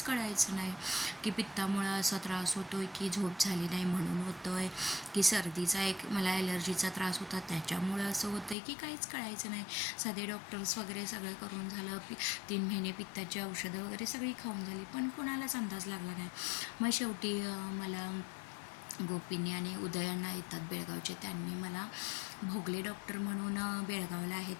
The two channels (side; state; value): right; drops out; at 8.6 s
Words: कळायचं नाही की पित्तामुळं असा त्रास होतो आहे, की झोप झाली नाही म्हणून होतो आहे, की सर्दीचा मला ॲलर्जीचा त्रास होता त्याच्यामुळं असं होतं आहे, की काहीच कळायचं नाही. साधे डॉक्टर्स वगैरे सगळं करून झालं, 3 महिने पित्ताची औषधं वगैरे सगळी खाऊन झाली, पण कोणालाच अंदाज लागला नाही. मग शेवटी मला गोपींनी आणि उदयांना येतात बेळगावचे, त्यांनी मला भोगले डॉक्टर म्हणून बेळगावला आहेत